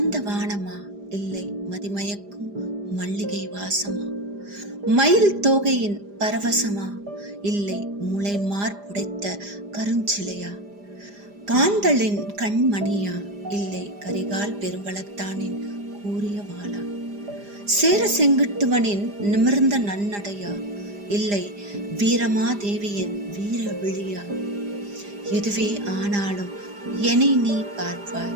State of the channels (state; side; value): late; left; 4.9 ms